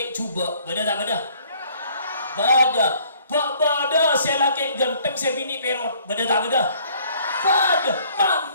coba beda tak beda se laki ganteng se bini perot beda tak beda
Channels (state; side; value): inverted; both; correlation -0.59